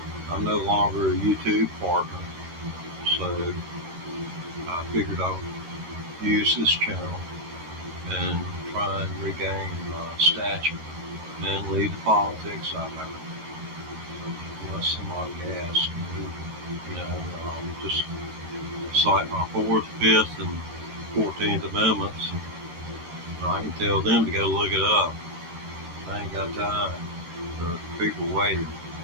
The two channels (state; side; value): late; left; 14 ms